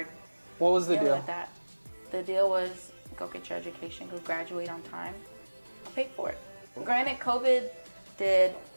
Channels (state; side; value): inverted; both; correlation -1.00